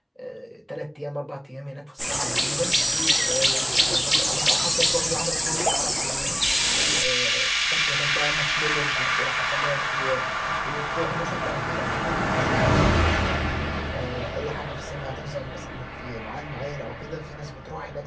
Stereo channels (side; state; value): both; identical; correlation 1.00